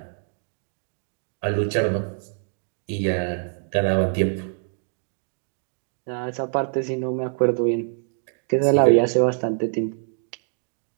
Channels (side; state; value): left; silent; 58 dB below the other